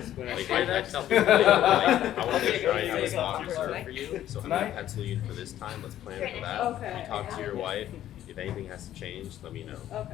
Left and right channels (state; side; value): quieter; right; 12.2 dB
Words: When I Like, say that, tell people, like, I want to Okay, try and have a okay. sponsor for you, so I'm Tonight? gonna pencil you in for this time, let's plan for that. Okay. You talk to your wife, if anything has to change, let me know,